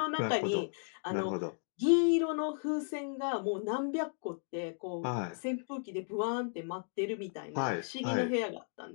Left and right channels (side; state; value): right; silent; 55 dB below the other